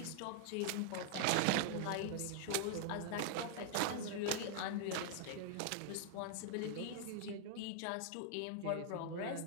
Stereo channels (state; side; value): different; both; correlation 0.00